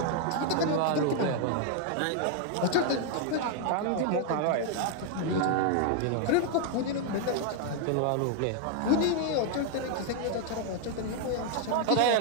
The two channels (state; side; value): different; both; correlation 0.00